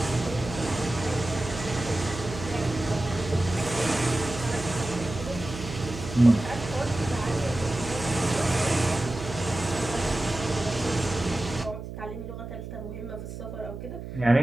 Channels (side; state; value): right; noise; hum, 9 dB below the sound